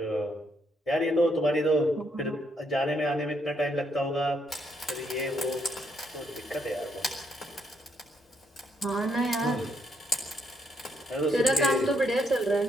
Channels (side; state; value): both; normal; correlation 0.74